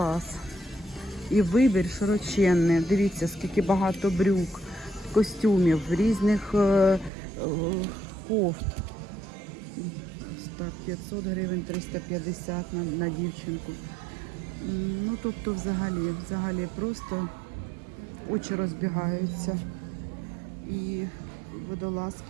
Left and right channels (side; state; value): left; drops out; at 7.1 s